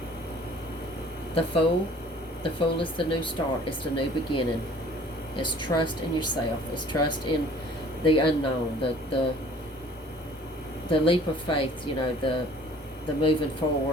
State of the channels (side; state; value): both; normal; correlation 0.52